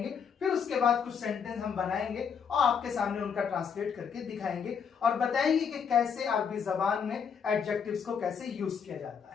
फिर उसके बाद कुछ सेंटेंस हम बनाएंगे और आपके सामने उनका ट्रांसलेट करके दिखाएंगे और बताएंगे कि कैसे अरबी जबान में एडजेक्टिव्स को कैसे यूज किया जाता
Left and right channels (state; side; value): quieter; right; 6.9 dB